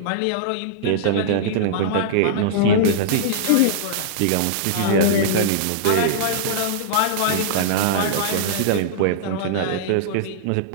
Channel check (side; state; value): both; different; correlation -0.02